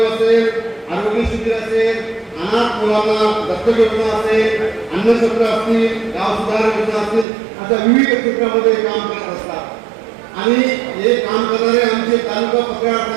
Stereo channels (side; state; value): left; drops out; at 7.2 s